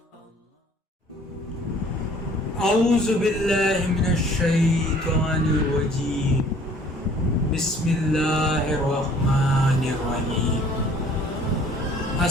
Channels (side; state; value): both; normal; correlation 0.55